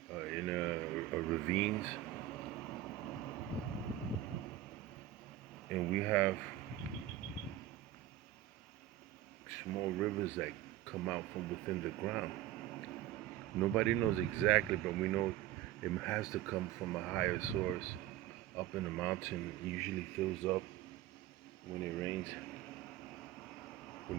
ravines, and we have small rivers that come out from within the ground. Nobody knows exactly, but we know it has to come from a higher source up in the mountain. It usually fills up when it rains,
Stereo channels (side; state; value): left; quieter; 13.6 dB